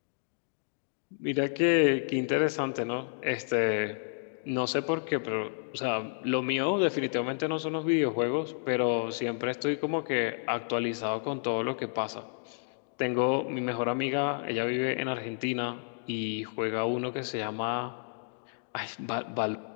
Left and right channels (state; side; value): silent; right; digital silence